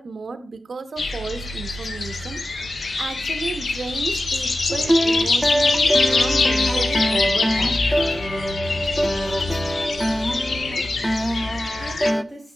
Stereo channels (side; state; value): both; normal; correlation 0.93